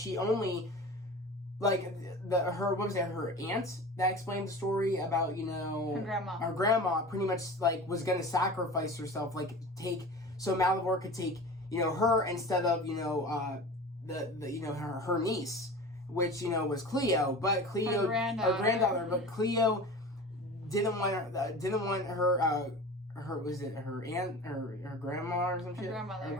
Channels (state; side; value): normal; both; correlation 0.35